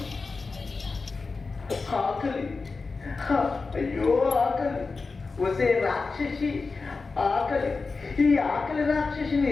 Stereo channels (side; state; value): right; quieter; 4.2 dB